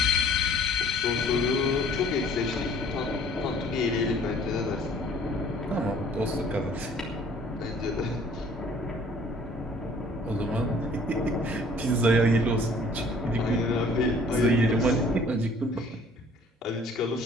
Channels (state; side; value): normal; both; correlation 0.55